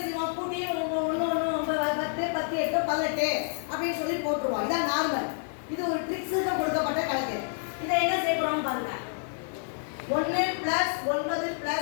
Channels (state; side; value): silent; right; digital silence